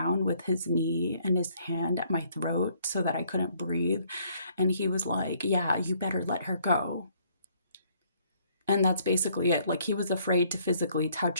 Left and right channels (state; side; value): inverted; both; correlation -0.65